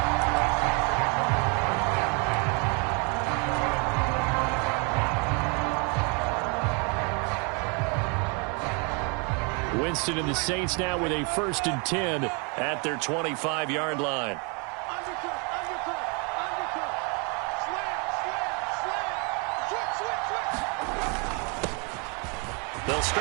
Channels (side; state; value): left; quieter; 34.1 dB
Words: Winston and the Saints now with a 1st and 10 at their 25-yard line. They'll